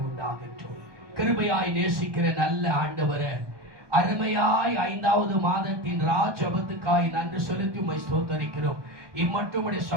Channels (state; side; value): late; left; 1.2 ms